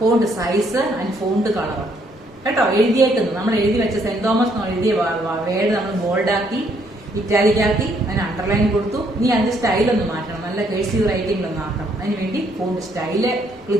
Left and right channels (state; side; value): normal; both; correlation 0.69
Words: font size and font colour കേട്ടോ. എഴുതിയേക്കുന്നത് നമ്മൾ എഴുതി വെച്ച സെന്റ് തോമസ് എഴുതിയ വേർഡ് നമ്മൾ ബോൾഡാക്കി ഇറ്റാലിക്കാക്കി അതിന് അണ്ടർലൈൻ കൊടുത്തു. ഇനി അതിന്റെ സ്റ്റൈൽ ഒന്ന് മാറ്റണം, നല്ല കേഴ്സീവ് റൈറ്റിംഗിലൊന്ന് ആക്കണം. അതിനുവേണ്ടി ഫോണ്ട് സ്റ്റൈല്